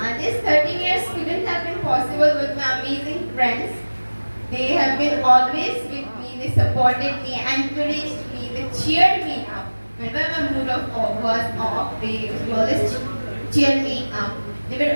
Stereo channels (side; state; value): both; inverted; correlation -1.00